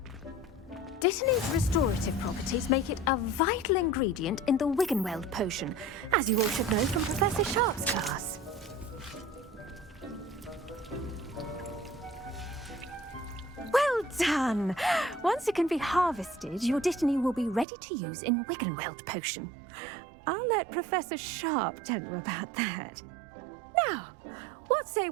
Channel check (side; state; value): left; drops out; at 17.7 s